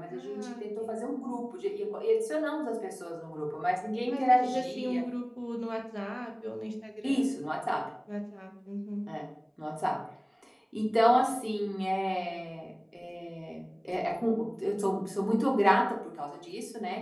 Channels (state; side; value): identical; both; correlation 1.00